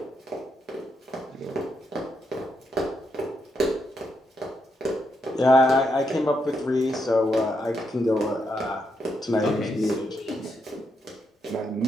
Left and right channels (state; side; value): normal; both; correlation 0.80